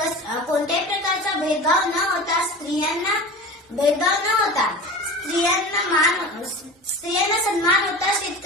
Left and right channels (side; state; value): both; normal; correlation 0.34